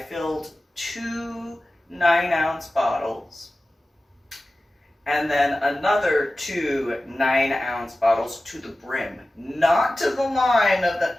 filled 2 9-ounce bottles, and then another 2 9-ounce bottles to the brim, not to the line of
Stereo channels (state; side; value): normal; both; correlation 0.96